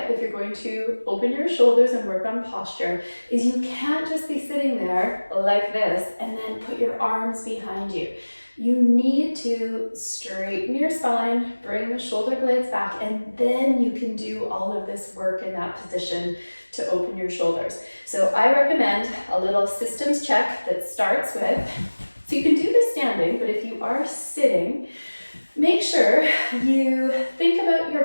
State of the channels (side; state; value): both; inverted; correlation -1.00